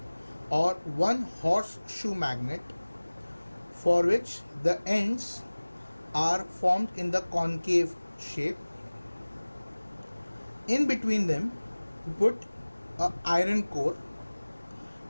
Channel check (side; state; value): both; inverted; correlation -1.00